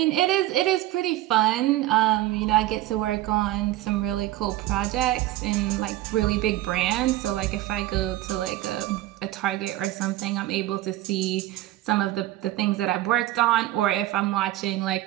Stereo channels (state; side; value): quieter; left; 15.5 dB